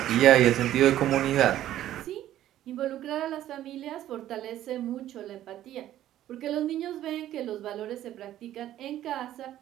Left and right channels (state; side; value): quieter; left; 12.7 dB